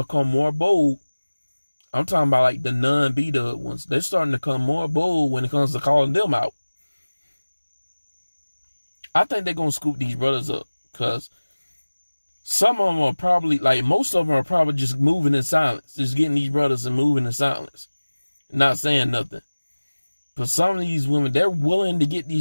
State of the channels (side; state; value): both; inverted; correlation -1.00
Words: become more bold. I'm talking about like the non-B-dub ones. They're starting to become more bold when it comes to calling them out. I think they're gonna scoop these brothers up, because some of them are probably, like most of them are probably just moving in silence, just getting these brothers and moving in silence, not saying nothing. But some of these women, they're willing to get